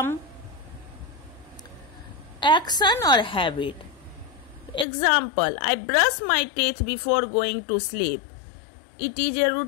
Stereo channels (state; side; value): drops out; right; at 4.9 s